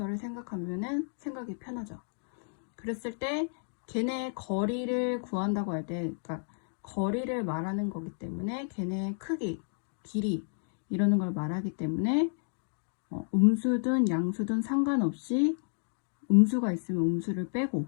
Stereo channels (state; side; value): silent; right; digital silence